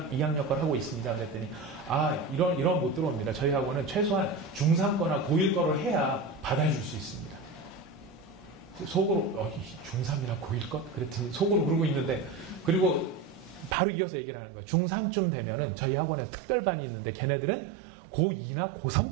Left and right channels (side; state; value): left; drops out; at 13.8 s